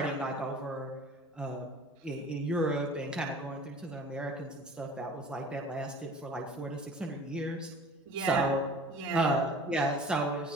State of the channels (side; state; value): both; normal; correlation 0.46